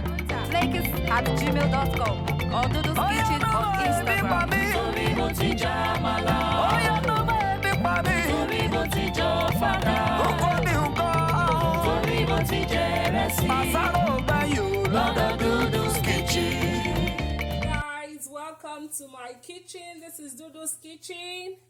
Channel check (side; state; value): both; identical; correlation 1.00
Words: flakes@gmail.com or Dhudhu's Kitchen on Instagram. Torí mo ti jẹ àmàlà. Oh yeah, no baby, baby. Torí mo ti jẹ ọ̀fadà. Torí mo ti jẹ ìrẹsì. Lọ́dọ̀ Dhudhu's Kitchen. Guys, welcome to my kitchen. This is Dhudhu's Kitchen.